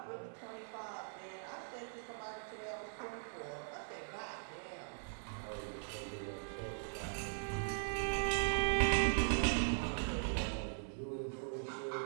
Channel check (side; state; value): left; silent; 51 dB below the other